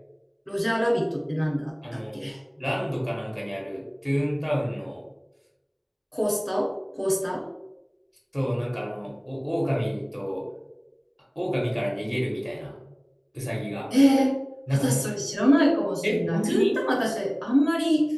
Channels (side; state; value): both; identical; correlation 1.00